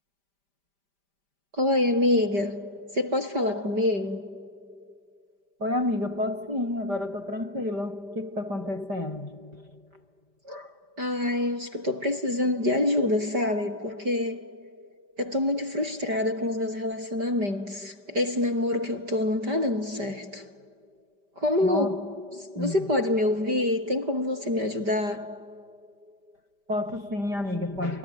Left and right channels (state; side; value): late; left; 5.1 ms